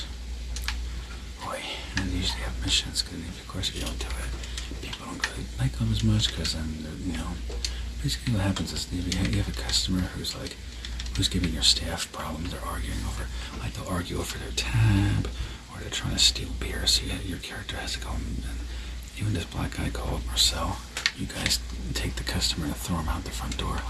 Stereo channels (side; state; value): both; identical; correlation 1.00